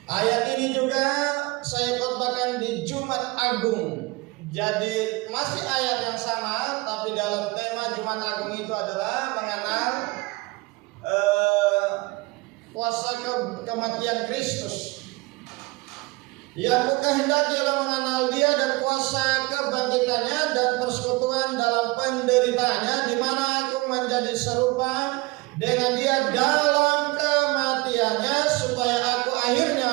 Ayat ini juga saya khotbahkan di Jumat Agung. Jadi masih ayat yang sama, tapi dalam tema Jumat Agung itu adalah mengenal kuasa kematian Kristus. Yang kukehendaki ialah mengenal Dia dan kuasa kebangkitannya dan persekutuan dalam penderitaannya, di mana aku menjadi serupa dengan Dia dalam kematiannya, supaya aku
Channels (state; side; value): quieter; left; 23.7 dB